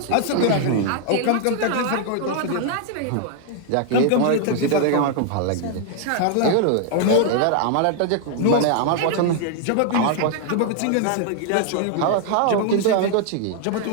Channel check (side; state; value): both; different; correlation 0.00